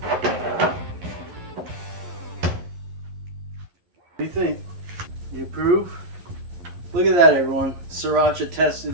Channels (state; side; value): late; left; 11 ms